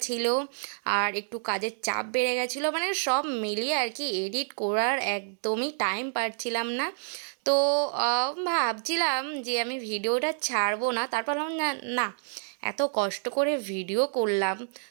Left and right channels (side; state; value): left; silent; digital silence